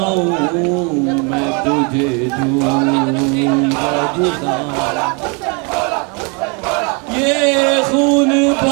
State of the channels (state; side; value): quieter; left; 33.4 dB